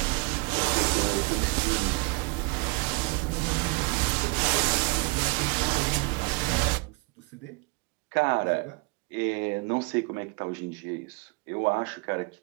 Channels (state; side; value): quieter; left; 30.2 dB